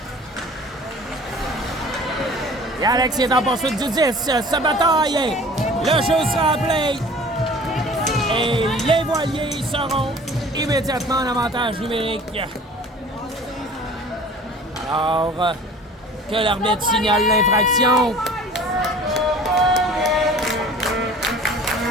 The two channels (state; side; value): normal; both; correlation 0.45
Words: Et Alex est en poursuite du 10. Se bataille. Le jeu sera appelé. Et les voiliers seront immédiatement en avantage numérique. Alors, que l'arbitre signale l'infraction.